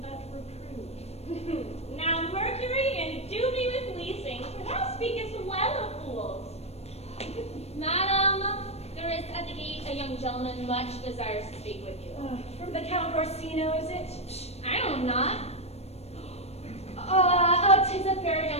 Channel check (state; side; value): late; right; 0.31 ms